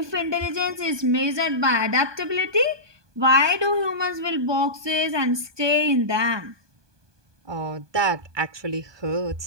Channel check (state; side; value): late; left; 1.2 ms